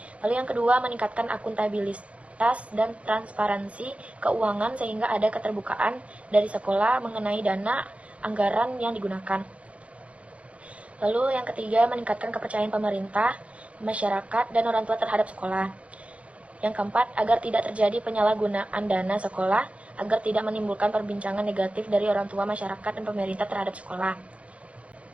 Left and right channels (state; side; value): late; left; 0.063 ms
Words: Lalu yang kedua meningkatkan akuntabilitas dan transparansi keuangan sehingga ada keterbukaan dari sekolah mengenai dana anggaran yang digunakan. Lalu yang ketiga meningkatkan kepercayaan pemerintah, masyarakat, dan orang tua terhadap sekolah. Yang keempat, agar tidak terjadi penyalahgunaan dana sekolah, agar tidak menimbulkan perbincangan negatif dari orang tua, masyarakat, dan pemerintah terhadap sekolah.